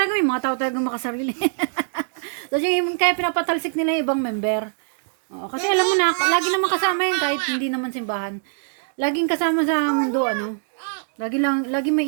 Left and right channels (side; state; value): left; silent; digital silence